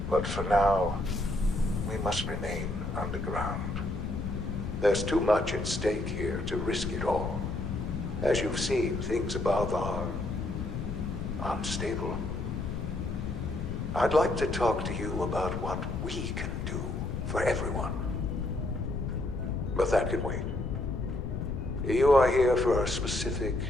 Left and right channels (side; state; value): left; noise; rumble, 3 dB below the sound